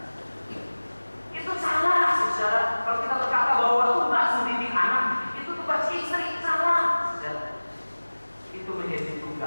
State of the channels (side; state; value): both; inverted; correlation -1.00